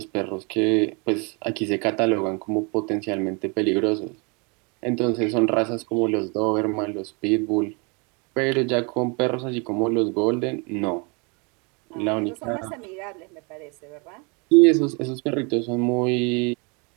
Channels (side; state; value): left; quieter; 32.0 dB